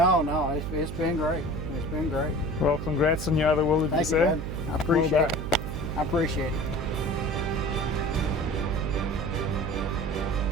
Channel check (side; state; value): right; noise; hum, 5 dB below the sound